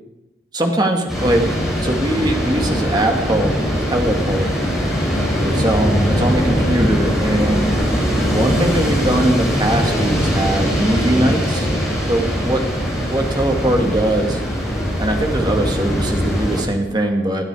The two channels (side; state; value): both; normal; correlation 0.75